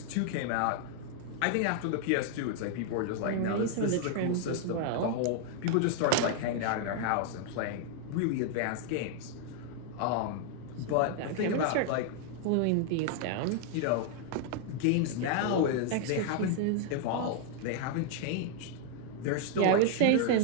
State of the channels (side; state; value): both; different; correlation 0.00